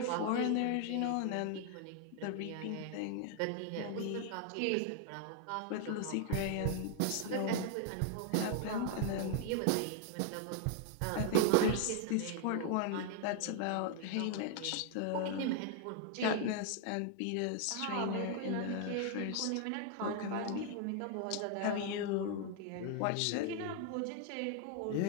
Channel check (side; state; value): both; different; correlation 0.00